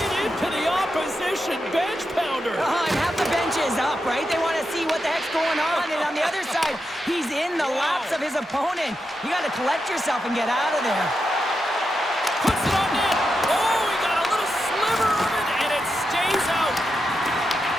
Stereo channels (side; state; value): both; normal; correlation 0.87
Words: into the opposition bench pounder. And half the bench is up, right? They want to see what the heck's going on. And on the other side, he's in the laps of his opponent. You got to collect yourself and get out of there. Puts it on net. Oh, he got a little sliver of it, and it stays out.